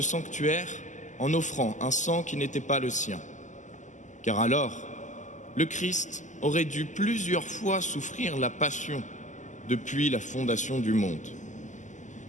sanctuaire en offrant un sang qui n'était pas le sien. Car alors, le Christ aurait dû plusieurs fois souffrir la passion depuis la fondation du monde.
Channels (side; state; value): right; late; 0.36 ms